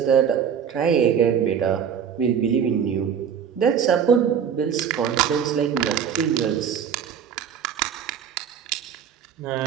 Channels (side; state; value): left; quieter; 7.9 dB